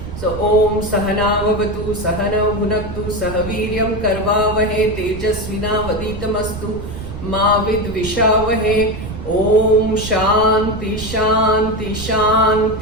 So Om Sahana Vavatu Sahana Bhunaktu Sahaviryam Karvavahe Tejasvina Vaditamastu Ma Vidvishavahe Om Shanti Shanti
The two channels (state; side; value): noise; right; rumble, 9 dB below the sound